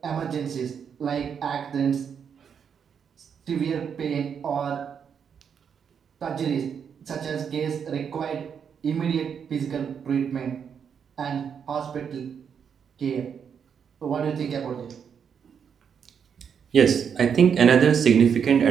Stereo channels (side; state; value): left; quieter; 7.3 dB